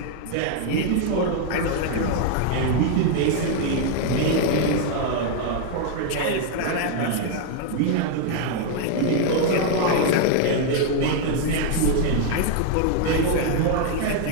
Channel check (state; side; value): different; both; correlation 0.00